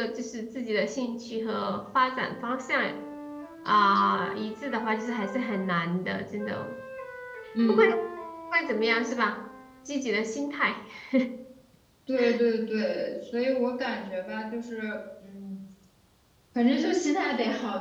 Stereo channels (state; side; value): identical; both; correlation 1.00